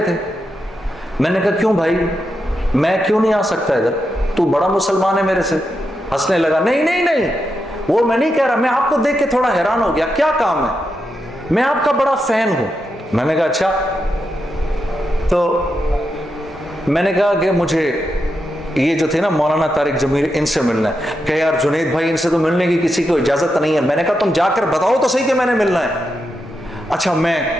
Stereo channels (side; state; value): both; normal; correlation 0.86